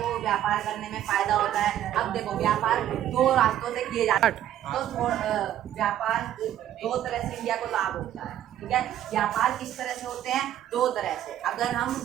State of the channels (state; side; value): quieter; left; 11.7 dB